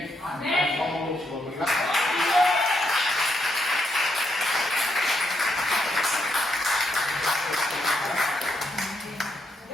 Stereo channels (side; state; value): both; normal; correlation 0.79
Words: Amém. Só uma do Senhor. Obrigado.